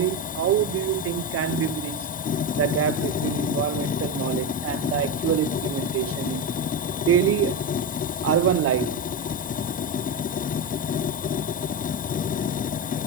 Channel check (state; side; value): normal; both; correlation 0.14